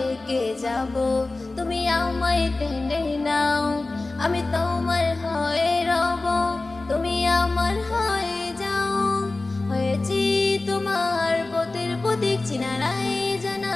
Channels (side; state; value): right; quieter; 3.2 dB